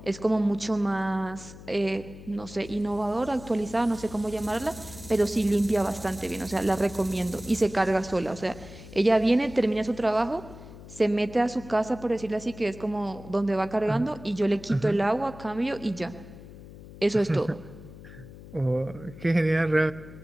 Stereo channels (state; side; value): noise; left; hum, 17 dB below the sound